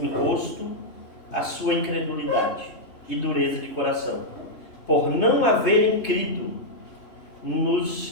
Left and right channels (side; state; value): right; late; 3.2 ms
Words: rosto a sua incredulidade e dureza de coração, por não haverem crido nos